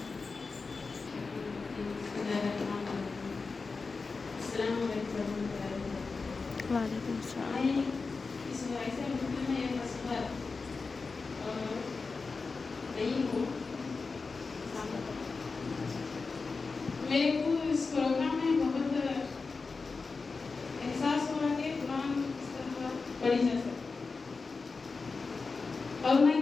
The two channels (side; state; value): right; quieter; 4.3 dB